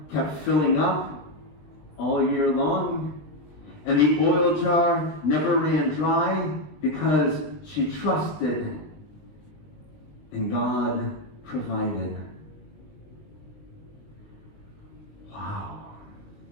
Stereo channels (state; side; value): late; right; 20 ms